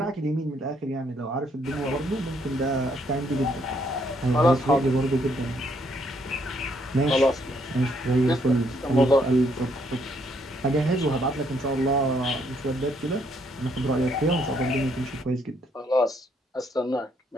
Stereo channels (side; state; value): both; normal; correlation 0.71